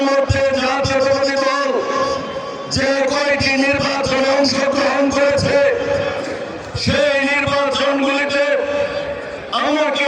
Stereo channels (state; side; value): identical; both; correlation 1.00